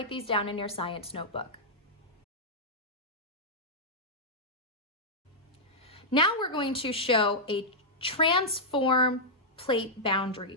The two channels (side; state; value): both; normal; correlation -0.09